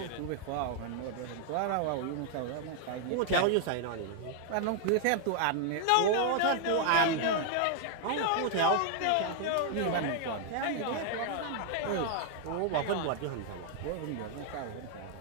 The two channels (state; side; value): different; both; correlation 0.00